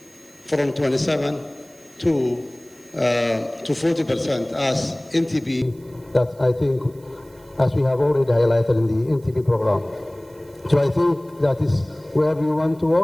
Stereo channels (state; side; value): noise; right; hiss, 29 dB below the sound